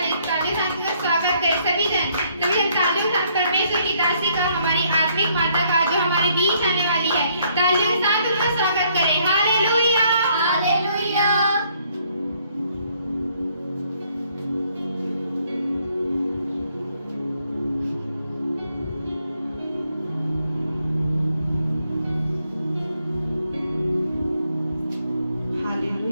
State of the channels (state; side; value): inverted; both; correlation -0.68